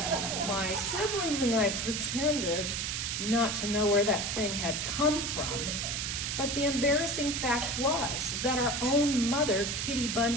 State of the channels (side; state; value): right; noise; hiss, 2 dB below the sound